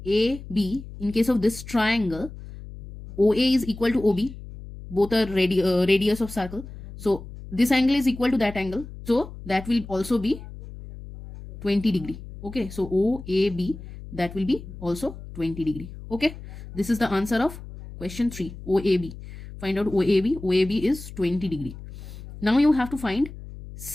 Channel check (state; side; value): noise; left; hum, 14 dB below the sound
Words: in case of this triangle, OA is equal to OB, both are radius of circle. So this angle is equal to that angle, so that will also be 20 degree. Okay, so OAB, that will be also 20 degree. Okay, this is the answer of question 3, OAB. Find out OAB. OAB is 20 degree. Now you have to find